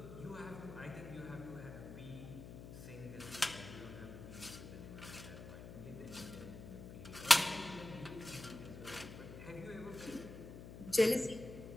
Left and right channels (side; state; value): left; noise; hum, 12 dB below the sound